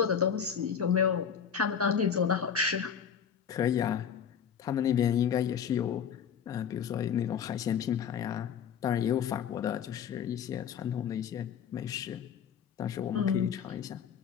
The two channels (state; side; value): quieter; right; 7.7 dB